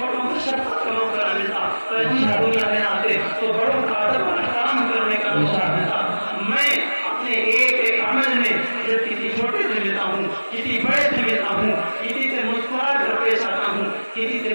کو شفقت کا موقع نہ ملتا، پیغمبر دنیا میں نہ آتے تو بڑوں کا ادب اور احترام کرنے کا موقع ملتا۔ میں اپنے ایک ایک عمل میں جب کسی چھوٹے سے ملتا ہوں، کسی بڑے سے ملتا ہوں، کسی سے مسکرا کر پیش آتا ہوں، کسی سے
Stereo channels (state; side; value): inverted; both; correlation -1.00